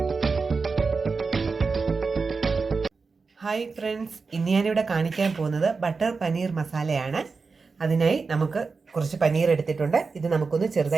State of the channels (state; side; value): quieter; left; 4.6 dB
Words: friends, ഇന്ന് ഞാനിവിടെ കാണിക്കാൻ പോകുന്നത് ബട്ടർ പനീർ മസാലയാണ്. അതിനായി നമുക്ക് കുറച്ച് പനീർ എടുത്തിട്ടുണ്ട്. ഇത് നമുക്കൊന്ന്